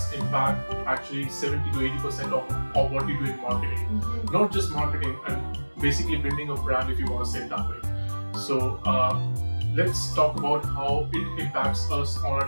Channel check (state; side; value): inverted; both; correlation -1.00